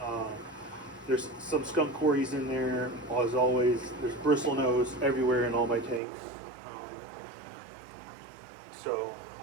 There's some skunk cories in there, as always. There's bristlenose everywhere in all my tanks. So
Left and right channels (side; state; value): left; drops out; at 6.0 s